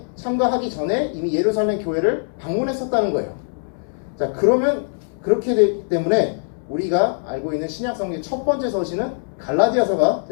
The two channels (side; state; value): right; silent; 65 dB below the other